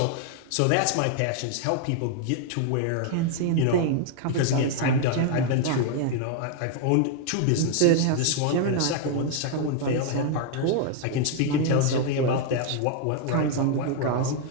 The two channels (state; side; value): different; both; correlation 0.00